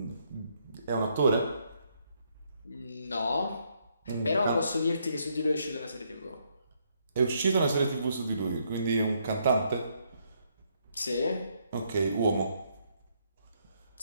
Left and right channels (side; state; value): both; inverted; correlation -0.73